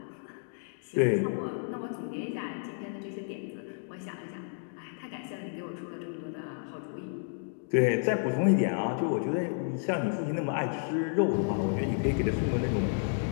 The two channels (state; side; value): silent; right; digital silence